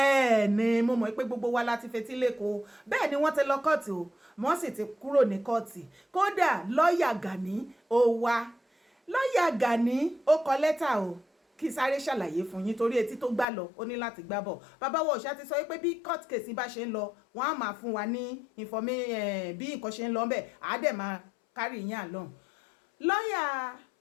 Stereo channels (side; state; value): right; drops out; at 13.5 s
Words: ni mo mọ̀ pé gbogbo wa láti fetí lẹ́kọ̀ọ́ bẹ́ẹ̀ ni wọ́n ti lọ kóòtù o wọ́n sì ti kúrò ní kóòtù kódà lọ́ọ̀yà Gani ó wá lọ́ọ̀yà Gani ó kọ lẹ́tà o kí sáré ṣàlàyé fún yín torí etí tó gbà lọ ó ní láti gbá bọ̀ bàbá wa òṣà ti sọ pé bí court case bá ṣe ń lọ wọ́n á máa fún wa ní bí nǹkan ṣe ń lọ bẹ́ẹ̀ á dẹ̀ máa kárí yín àlọ́hùn lọ́ọ̀yà